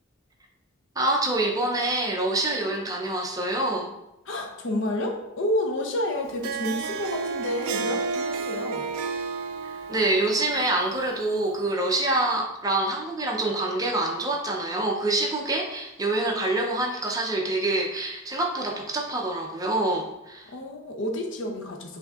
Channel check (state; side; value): normal; both; correlation 0.14